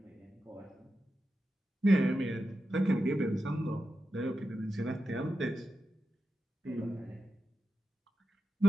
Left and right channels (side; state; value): both; normal; correlation 0.90